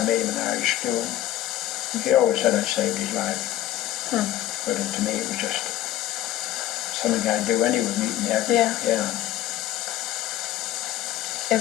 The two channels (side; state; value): right; quieter; 13.5 dB